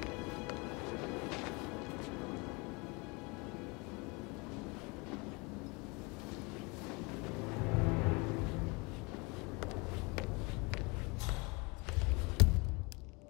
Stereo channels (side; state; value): right; quieter; 28.0 dB